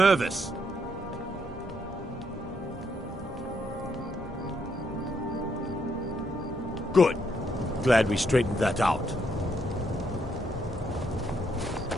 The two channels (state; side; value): normal; both; correlation 0.74